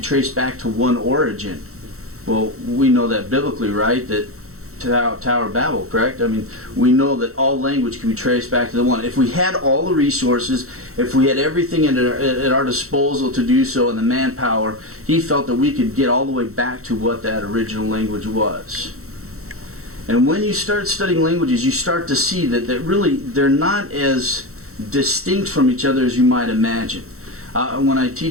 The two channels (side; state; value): left; late; 0.63 ms